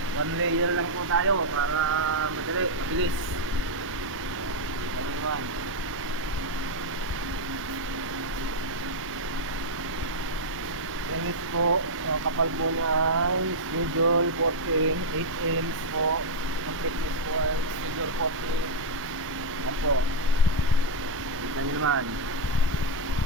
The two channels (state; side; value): normal; both; correlation -0.03